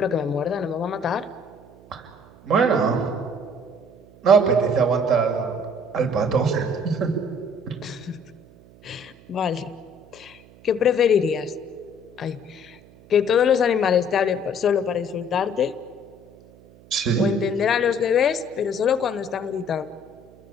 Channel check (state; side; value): noise; right; hum, 24 dB below the sound